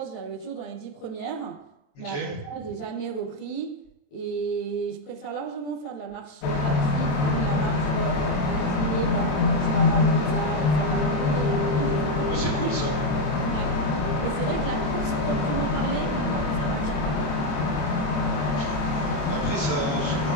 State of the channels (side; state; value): right; late; 27 ms